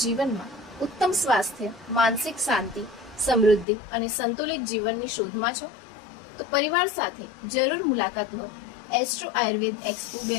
જીવનમાં ઉત્તમ સ્વાસ્થ્ય, માનસિક શાંતિ, સમૃદ્ધિ અને સંતુલિત જીવનની શોધમાં છો? તો પરિવાર સાથે જરૂર મુલાકાત લો એસ્ટ્રો આયુર્વેદ એક્સપો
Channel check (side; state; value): right; drops out; at 3.7 s